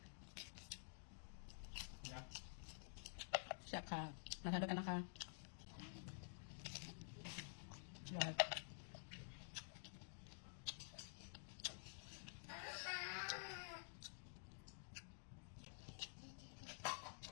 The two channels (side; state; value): right; silent; digital silence